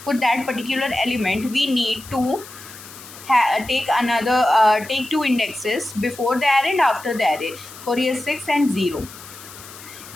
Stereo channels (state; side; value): noise; left; hiss, 17 dB below the sound